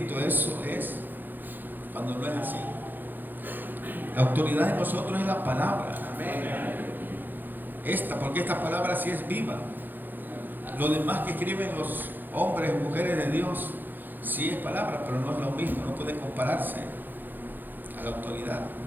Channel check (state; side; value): late; left; 0.089 ms